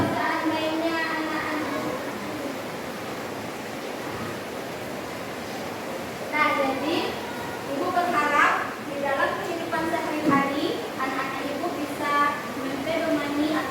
seandainya anak-anak, nah jadi ibu berharap di dalam kehidupan sehari-hari anak-anak ibu bisa mempedomani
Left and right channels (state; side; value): identical; both; correlation 1.00